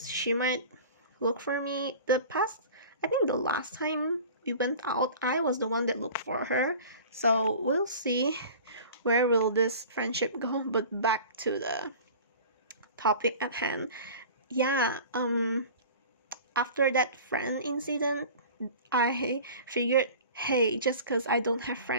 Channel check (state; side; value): inverted; both; correlation -0.40